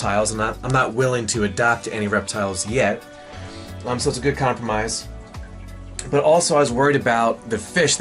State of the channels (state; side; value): identical; both; correlation 1.00